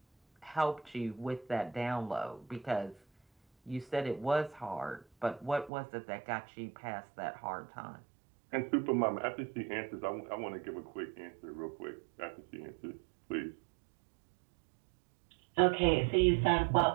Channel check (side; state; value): left; drops out; at 5.7 s